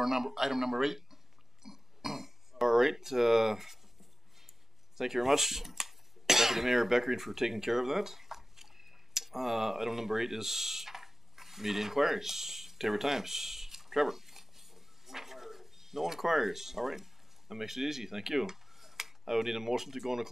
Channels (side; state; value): both; normal; correlation 0.96